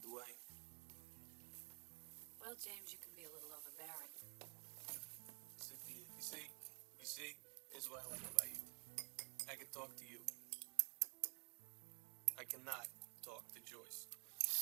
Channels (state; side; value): quieter; left; 33.9 dB